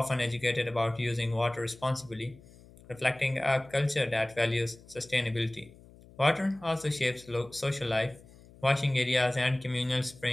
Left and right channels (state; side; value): noise; left; hum, 23 dB below the sound